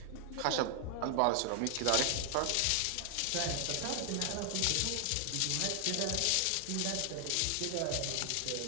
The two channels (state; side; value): different; both; correlation 0.00